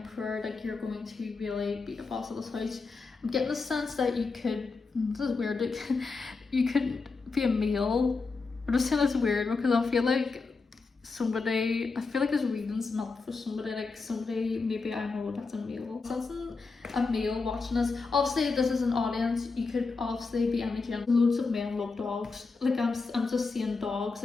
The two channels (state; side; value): quieter; right; 4.3 dB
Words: like you're going to really be the boss of this house. I'm getting the sense that you could, this is weird, like, you could be a male. I'm just saying it's weird because I feel like this reading's not for somebody, like somebody, maybe I know that's a male. Sensing a male watching this. Obviously this is an audience, you could obviously be any gender. Loads of men love dogs. Like I'm just seeing dogs.